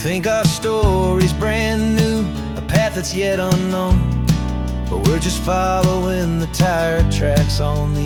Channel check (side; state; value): both; identical; correlation 1.00